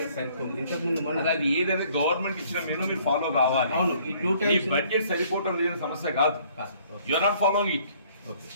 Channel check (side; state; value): both; inverted; correlation -0.60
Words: సరిపోదు. ఇంతకుముందు మనం అది ఏదైనా గవర్నమెంట్ ఇచ్చిన మెనూ మీరు ఫాలో కావాలి. అవును, ఈ 2 టైమ్స్ బడ్జెట్ సరిపోవటం లేని సమస్య కాదు. You are not following it. Okay